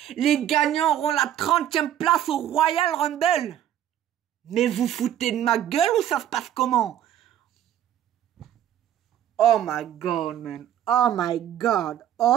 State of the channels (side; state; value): left; quieter; 11.1 dB